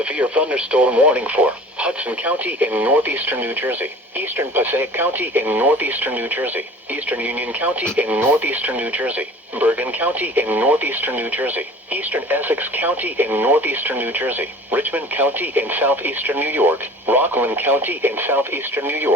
thunderstorm warning for Hudson County in northeastern New Jersey, eastern Passaic County in northeastern New Jersey, eastern Union County in northeastern New Jersey, Bergen County in northeastern New Jersey, eastern Essex County in northeastern New Jersey, Richmond County in southeastern New York, Rockland County in southeastern New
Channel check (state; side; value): normal; both; correlation 0.43